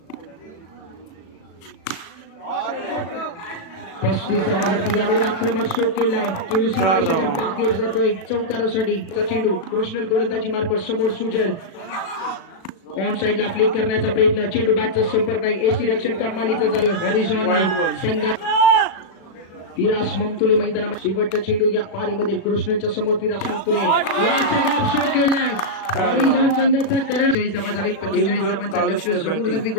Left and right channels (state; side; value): late; right; 37 ms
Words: 35 धावांवरती. यावेळी आक्रमक स्ट्रोक केलाय. चेंडू बाहेर जातोय चौकारासाठी. चेंडू कृष्णल गोलंदाजी मार्फत समोर सुजल. ऑन साइडला फ्लिक करण्याचा प्रयत्न. चेंडू बॅटचा संपर्क नाही. एसी रक्षण कमालीचा झालं. हॉरिझॉन संघ फिरास ममतुले मैदानामध्ये शेवटचा चेंडू या पारीमध्ये कृष्णच्या समोर फिरास ममतुले शॉट केलाय हॉरिझॉन संघाचा करण 40 धावा झाले 45 धावांचा लक्ष्य समोरदर्वी